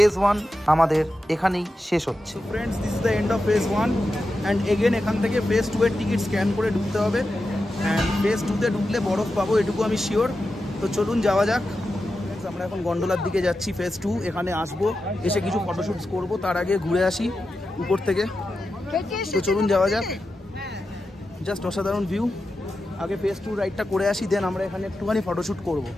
1 আমাদের এখানেই শেষ হচ্ছে। Friends, this is the end of phase 1 and again এখান থেকে ফেজ 2 এর টিকিট স্ক্যান করে ঢুকতে হবে। অ্যান্ড ফেজ 2তে ঢুকলে বরফ পাবো, এটুকু আমি শিওর। তো চলুন যাওয়া যাক। আমরা এখন গন্ডোলার দিকে যাচ্ছি, ফেজ 2। এখানে আসবো, এসে কিছু ফটোশ্যুটস করব, তার আগে ঘুরে আসি উপর থেকে। তো চলুন যাওয়া যাক। জাস্ট অসাধারণ ভিউ। আগে ফেজ 2 রাইডটা করে আসি, দেন আমরা এখানে একটুখানি ফটোশ্যুট করবো।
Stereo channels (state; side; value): normal; both; correlation 0.90